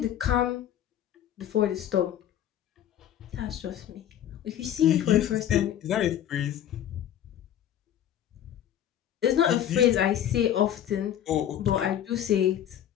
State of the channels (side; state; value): right; quieter; 10.7 dB